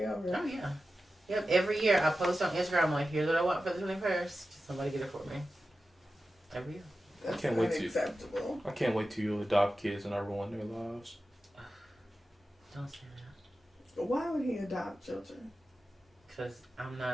over? Oh, yeah. Yep, every year I post on Instagram, I'm like, here's what I want for the 21st. Somebody get it for me. Every year. That's I can't wait unacceptable. I can't wait till you adopt kids and I ruin their lives. Don't say that. Why would he adopt children? Because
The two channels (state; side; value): normal; both; correlation 0.93